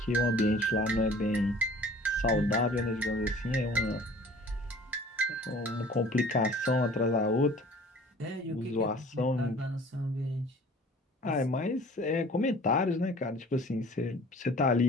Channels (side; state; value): both; normal; correlation 0.48